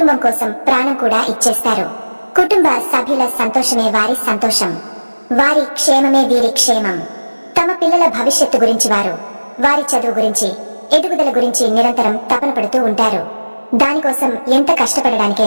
కోసం ప్రాణం కూడా ఇచ్చేస్తారు. కుటుంబ సభ్యుల సంతోషమే వారి సంతోషం, వారి క్షేమమే వీరి క్షేమం. తమ పిల్లల భవిష్యత్తు గురించి వారు, వారి చదువు గురించి ఎదుగుదల గురించి నిరంతరం తపన పడుతూ ఉంటారు. దానికోసం ఎంత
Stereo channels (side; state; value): both; inverted; correlation -1.00